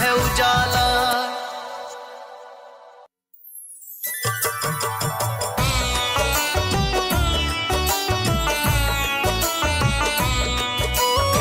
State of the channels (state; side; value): identical; both; correlation 1.00